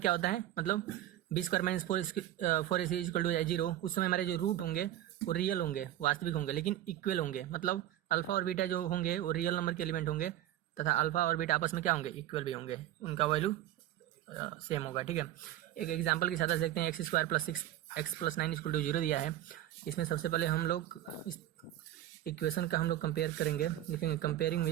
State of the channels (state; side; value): quieter; left; 13.1 dB